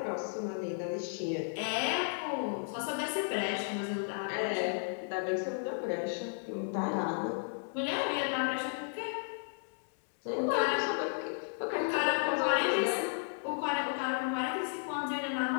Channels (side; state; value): right; silent; digital silence